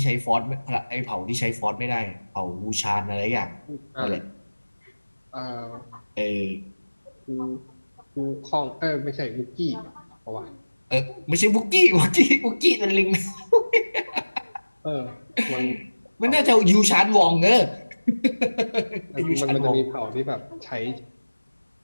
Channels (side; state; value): both; inverted; correlation -1.00